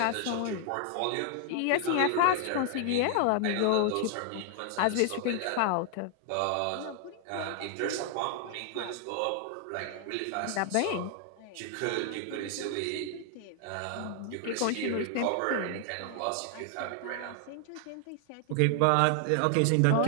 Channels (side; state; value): both; different; correlation 0.00